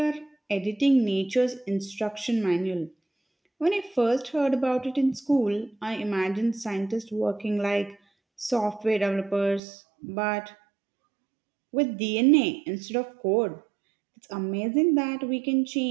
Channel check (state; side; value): drops out; left; at 9.6 s